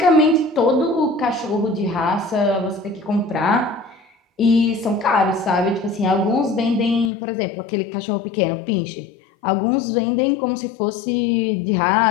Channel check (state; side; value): drops out; right; at 7.1 s